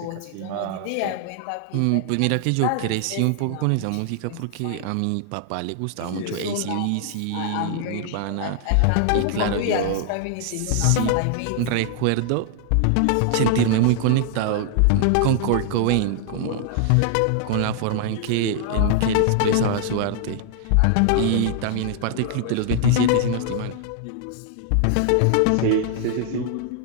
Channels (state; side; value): different; both; correlation 0.00